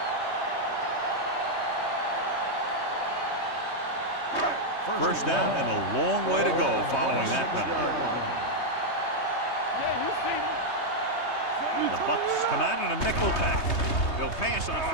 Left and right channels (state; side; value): late; right; 3.2 ms